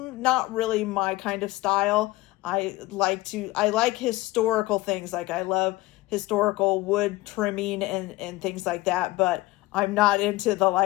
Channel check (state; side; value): quieter; right; 19.4 dB